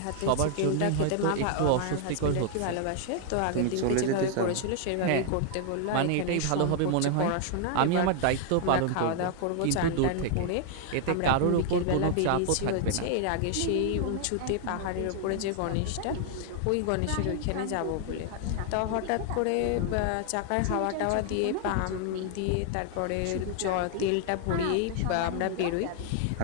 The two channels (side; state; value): both; different; correlation 0.00